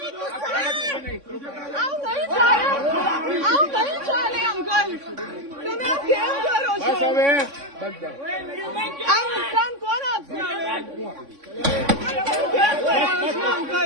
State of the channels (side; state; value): left; late; 3.6 ms